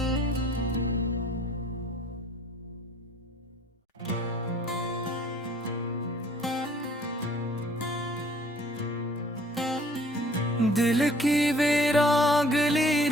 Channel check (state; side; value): normal; both; correlation 0.56